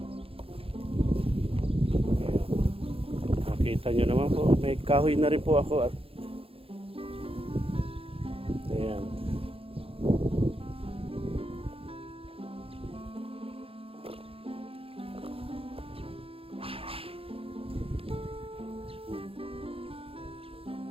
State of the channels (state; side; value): late; left; 0.27 ms